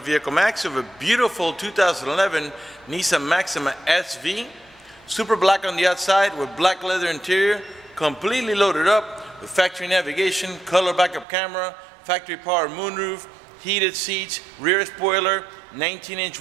We have a beautiful 2011 Nissan Maxima SV. Super black on the outside with black leather interior, completely loaded up with factory navigation, color backup camera, factory power moonroof, heated seats, rear spoiler, 19-inch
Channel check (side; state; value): left; drops out; at 11.2 s